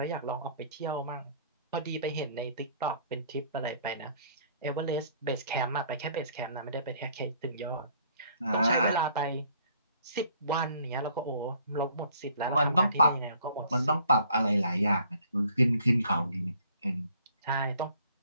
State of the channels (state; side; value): inverted; both; correlation -0.59